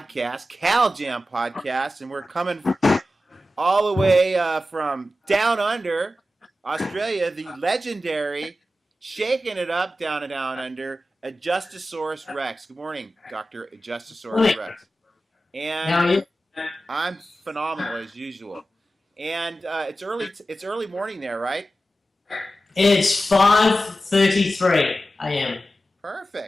Cal Jam podcast, and we're coming all the way from down under Australia, the legendary, shaking it up down and down under, Adjustosaurus Rex. Good morning, Dr. Adjustosaurus Rex. How are you? And I'm phenomenal as usual. And it's early morning there, right? It's 5:33 a.m.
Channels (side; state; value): both; normal; correlation 0.93